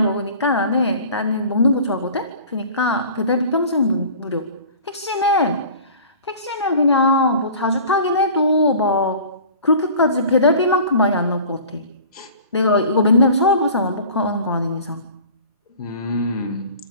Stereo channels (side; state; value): both; inverted; correlation -0.43